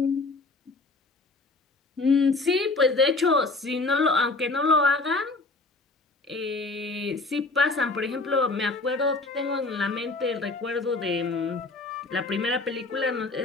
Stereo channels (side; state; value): right; quieter; 3.4 dB